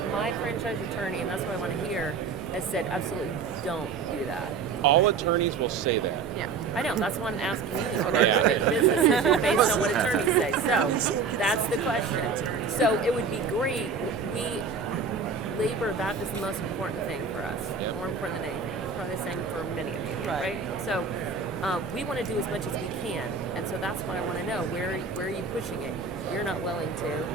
franchise attorney, and that's what I want to hear, has said absolutely don't do that. All attorneys will say that. Yeah, I know. That's why I'm asking you. I'm not going to make a business decision based on what attorneys say. So that's the question. So it would be great. Labor, that is the most important thing for us. More important than anything. Probably the same for many of you, right? So we want to do as much as we can, and so that's why I want to know where are you pushing it? You're not willing to.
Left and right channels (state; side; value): quieter; left; 5.2 dB